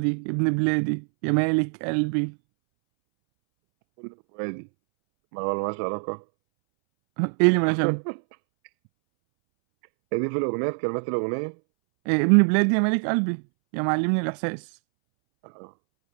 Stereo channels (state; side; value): silent; left; 63 dB below the other